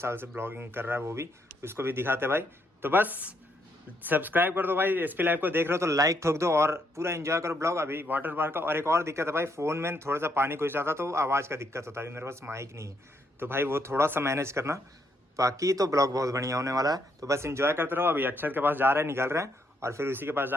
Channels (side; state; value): both; normal; correlation 0.75